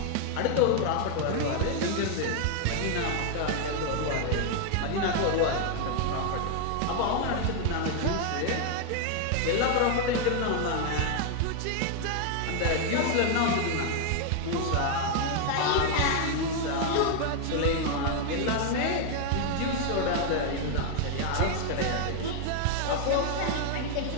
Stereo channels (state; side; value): different; both; correlation 0.00